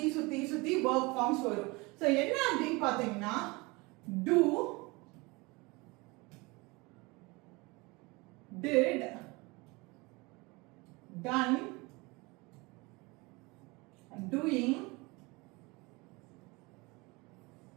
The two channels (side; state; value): left; quieter; 25.2 dB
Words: verb forms வரும். சோ என்ன அப்படினு பாத்தீங்கன்னா do, did, done, doing,